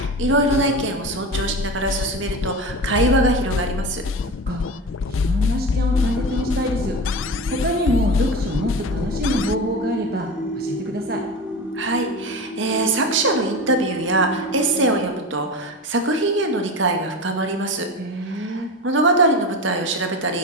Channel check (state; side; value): normal; both; correlation 0.26